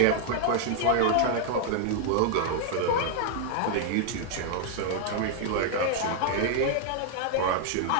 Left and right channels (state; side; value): different; both; correlation 0.00